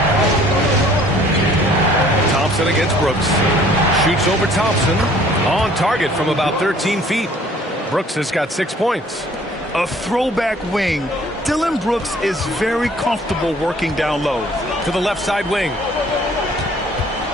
Thompson against Brooks. Shoots over Thompson. On target from about 13 feet. Brooks has got 6 points. A throwback wing. Dylan Brooks is very comfortable working down low. To the left side wing.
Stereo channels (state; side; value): normal; both; correlation 0.56